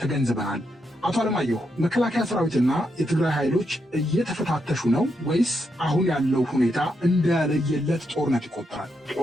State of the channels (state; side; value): normal; both; correlation 0.81